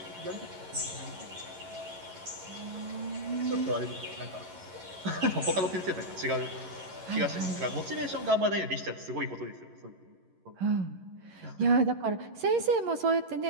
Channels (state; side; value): late; left; 11 ms